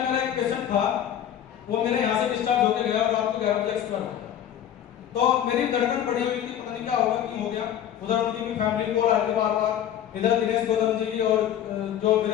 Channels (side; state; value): right; quieter; 10.3 dB